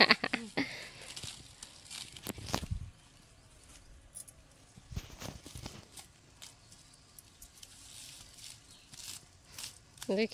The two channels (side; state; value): both; identical; correlation 1.00